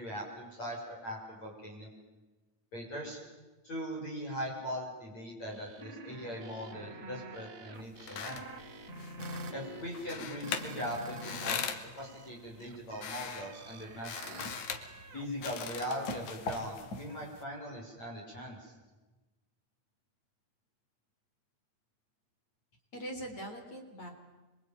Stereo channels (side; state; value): right; late; 9.2 ms